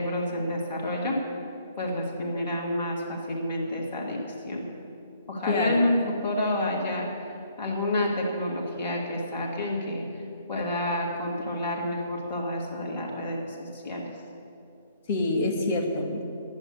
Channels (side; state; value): both; inverted; correlation -0.65